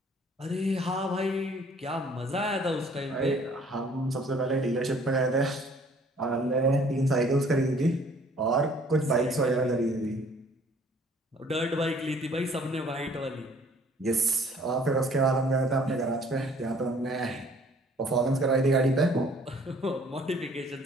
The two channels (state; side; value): normal; both; correlation 0.57